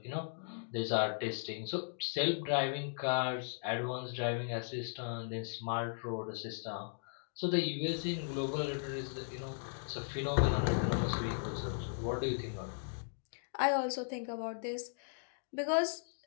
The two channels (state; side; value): silent; right; digital silence